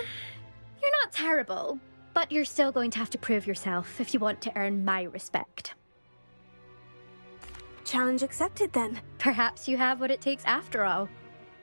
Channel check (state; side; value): inverted; both; correlation -1.00